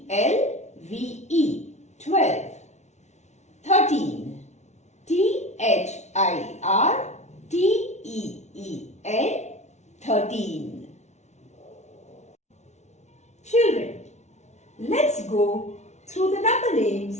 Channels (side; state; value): right; late; 0.33 ms